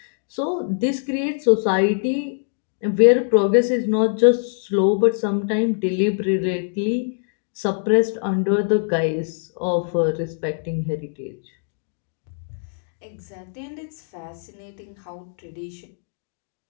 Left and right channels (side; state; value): right; silent; digital silence